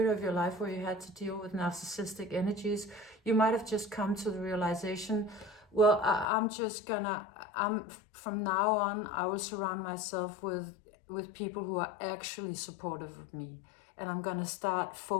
of your life where you had to deal with narcissistic energies, you might have just come to the realization, well, from now on, I will surround myself with people who are actually supportive of me. And I'm gonna start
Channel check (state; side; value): drops out; right; at 6.2 s